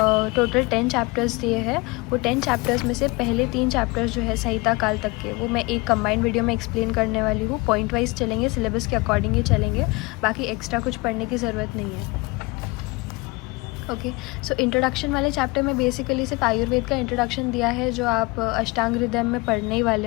टोटल 10 चैप्टर्स दिए हैं। वो 10 चैप्टर्स में से पहले 3 चैप्टर्स जो है संहिता काल तक के, वो मैं एक कंबाइंड वीडियो में एक्सप्लेन करने वाली हूँ। पॉइंट वाइज चलेंगे, सिलेबस के अकॉर्डिंग ही चलेंगे, बाकी एक्स्ट्रा कुछ पढ़ने की ज़रूरत नहीं है। ओके, सो इंट्रोडक्शन वाले चैप्टर में बेसिकली सिर्फ आयुर्वेद का इंट्रोडक्शन दिया है, जो आप अष्टांग हृदय में पढ़ने ही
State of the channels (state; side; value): quieter; right; 25.3 dB